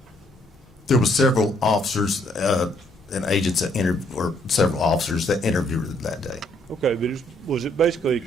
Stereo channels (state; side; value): normal; both; correlation 0.68